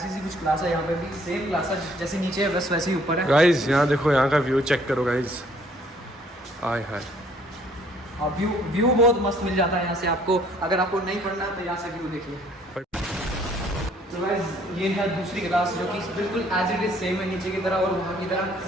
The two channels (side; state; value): both; normal; correlation 0.61